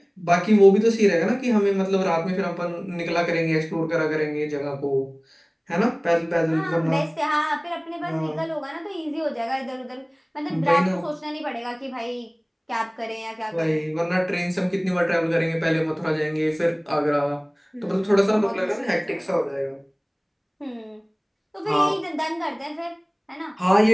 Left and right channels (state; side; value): identical; both; correlation 1.00